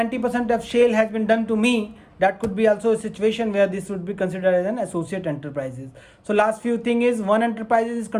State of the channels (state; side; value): identical; both; correlation 1.00